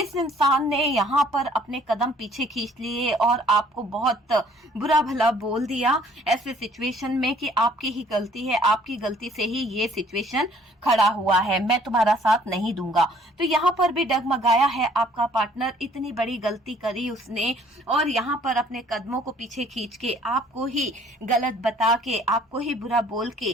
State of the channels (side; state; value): both; normal; correlation 0.58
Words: इंसान ने यहाँ पर अपने कदम पीछे खींच लिए और आपको बहुत बुरा भला बोल दिया ऐसे सिचुएशन में कि आपकी ही गलती है, आपकी गलती से ही ये सिचुएशन खड़ा हुआ है, मैं तुम्हारा साथ नहीं दूंगा। तो यहाँ पर भी डगमगाया है आपका पार्टनर। इतनी बड़ी गलती करी उसने, और यहाँ पर अपने कदमों को पीछे खींच के आपको ही गलत बता के, आपको ही बुरा बोल